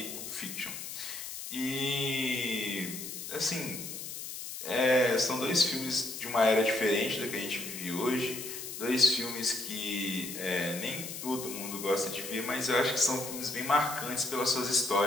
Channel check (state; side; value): noise; left; hiss, 8 dB below the sound